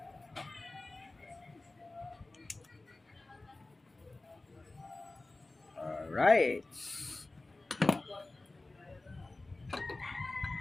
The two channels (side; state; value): right; quieter; 3.1 dB